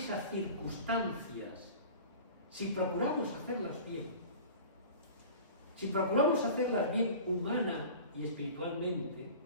circunstancias, si procuramos hacerlas bien, humana y espiritualmente,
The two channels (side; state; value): both; inverted; correlation -0.39